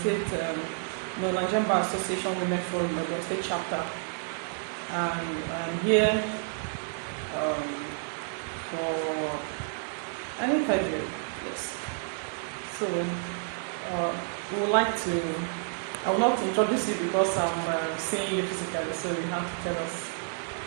State, Nigerian Bar Association Women Forum, Ebonyi State chapter. And I am here for an interview, yes. So, we would like to, I will not introduce you because I'm seeing you physically, so you have to tell us,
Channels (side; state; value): left; silent; 58 dB below the other